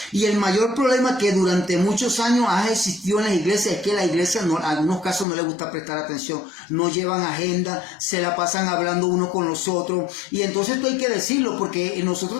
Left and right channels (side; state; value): right; drops out; at 5.2 s